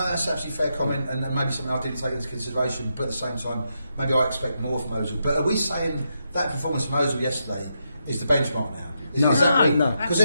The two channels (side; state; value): both; inverted; correlation -0.83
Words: that's absolutely fair comment, and maybe something I didn't take into consideration, but at the same time, maybe I expect more from Ozil. But are we saying that performance from Ozil yesterday is the benchmark now? No, because